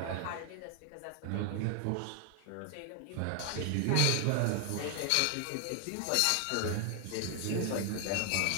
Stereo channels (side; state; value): both; different; correlation 0.00